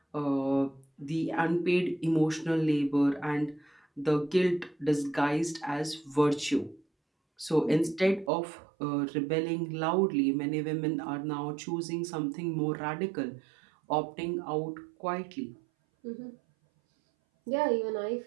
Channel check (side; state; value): left; drops out; at 8.3 s